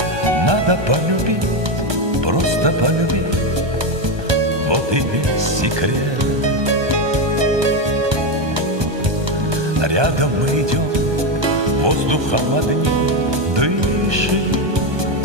Надо полюбить, просто полюбить, вот и весь секрет. Рядом мы идем, воздухом одним дышим,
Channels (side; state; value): left; late; 1.2 ms